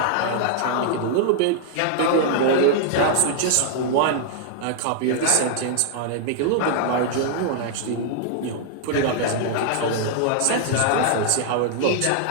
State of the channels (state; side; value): different; both; correlation -0.01